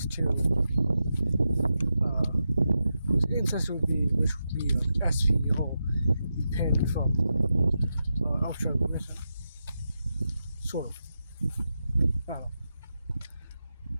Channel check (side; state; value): both; inverted; correlation -0.88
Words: to his ancestor which would be SP, or the Penn from Ultra Mission. Sort of. I don't know.